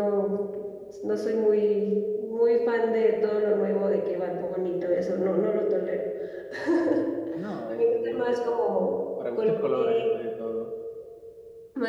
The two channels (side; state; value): both; identical; correlation 1.00